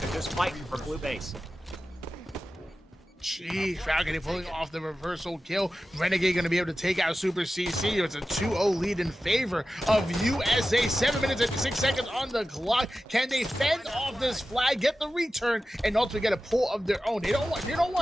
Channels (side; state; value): both; normal; correlation 0.94